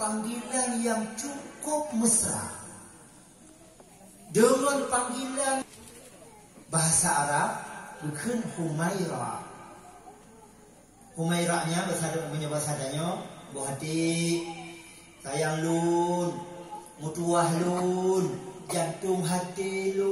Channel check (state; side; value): identical; both; correlation 1.00